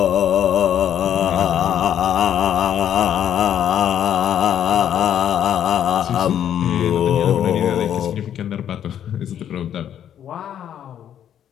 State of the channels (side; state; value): right; quieter; 9.9 dB